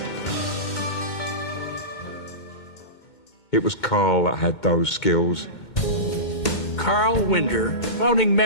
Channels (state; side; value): late; right; 2.2 ms